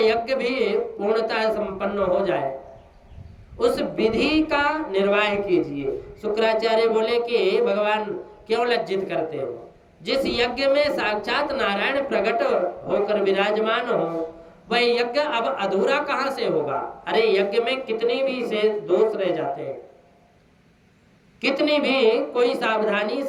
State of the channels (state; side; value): identical; both; correlation 1.00